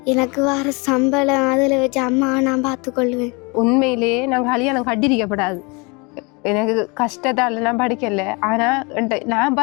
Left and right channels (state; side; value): quieter; right; 29.3 dB